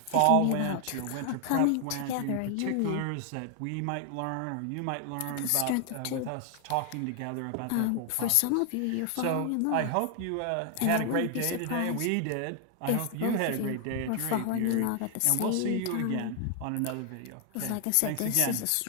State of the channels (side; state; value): both; different; correlation 0.00